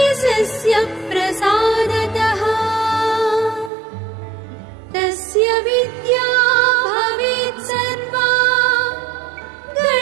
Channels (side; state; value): left; drops out; at 3.7 s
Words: प्रसादतः तस्य विद्या भवेत् सर्वा